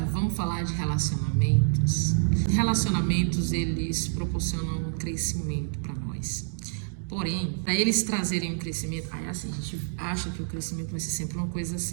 vamos falar de relacionamentos. Relacionamentos, eles proporcionam um crescimento para nós. Porém, para eles trazerem um crescimento, aí assim, a gente acha que o crescimento vai ser sempre uma coisa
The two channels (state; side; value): silent; left; digital silence